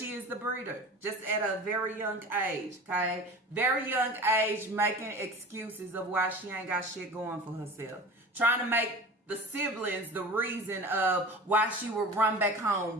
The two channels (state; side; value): normal; both; correlation 0.36